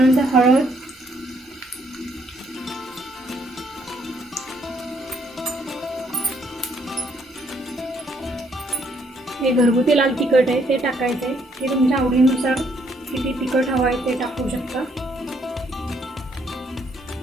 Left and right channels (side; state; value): both; normal; correlation 0.69